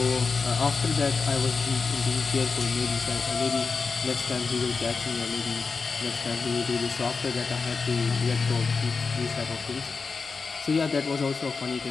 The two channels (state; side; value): quieter; right; 4.7 dB